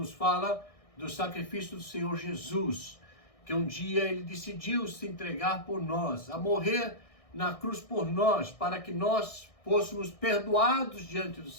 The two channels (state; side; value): late; right; 1.6 ms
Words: fala do sacrifício do Senhor Jesus, que um dia ele decidiu se entregar por nós, a morrer na cruz por nós, para que nós fôssemos perdoados diante do